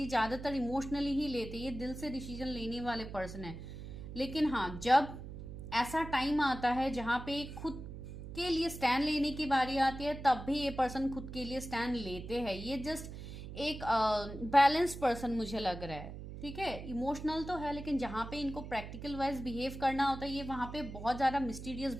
ज़्यादातर इमोशनली ही लेते, ये दिल से डिसीजन लेने वाले पर्सन है। लेकिन हाँ, जब ऐसा टाइम आता है जहाँ पे खुद के लिए स्टैंड लेने की बारी आती है, तब भी ये पर्सन खुद के लिए स्टैंड लेते हैं। ये जस्ट एक बैलेंस पर्सन मुझे लग रहा है, ठीक है। इमोशनल तो है, लेकिन जहाँ पे इनको प्रैक्टिकल वाइज बिहेव करना होता है, ये वहाँ पे बहुत ज़्यादा मिस्टीरियस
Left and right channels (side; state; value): right; noise; hum, 10 dB below the sound